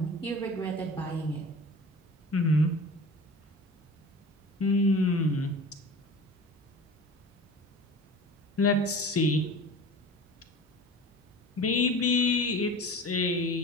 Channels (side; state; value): both; normal; correlation 0.38